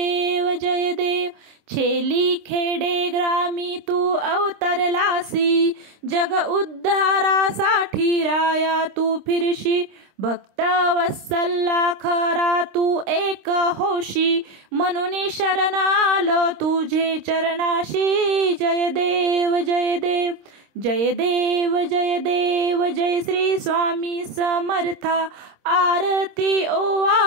छेली खेडे ग्रामी तू अवतरलासी। जग उद्धारासाठी राया तू फिरशी। भक्त वत्सला खरा तू एक होशी। म्हणून शरण आलो तुझे चरणाशी। जय देव जय श्री स्वामी समर्था। आरती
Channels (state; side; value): late; left; 26 ms